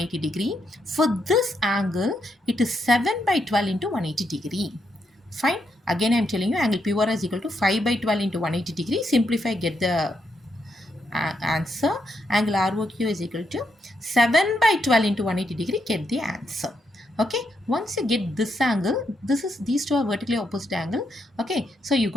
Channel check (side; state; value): both; normal; correlation 0.80